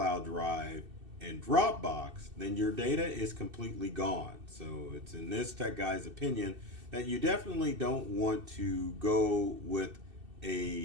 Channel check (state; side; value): late; left; 2.6 ms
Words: Drive, and Dropbox, then your data is completely gone. So it's in this tech guy's opinion that you definitely don't want to go with